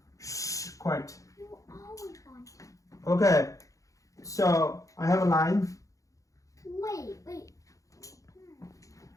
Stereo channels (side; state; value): right; late; 0.16 ms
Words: Shh, quiet. You always want to. Okay, so I have a line. Wait.